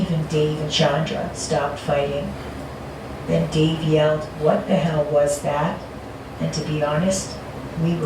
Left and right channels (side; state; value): both; identical; correlation 1.00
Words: Dave and Chandra stopped fighting. Then Dave yelled, "What the hell was that?" And to be honest, we